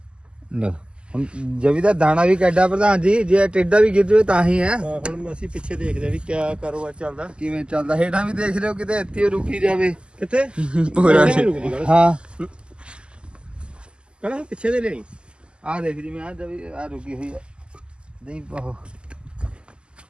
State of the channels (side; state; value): left; late; 0.051 ms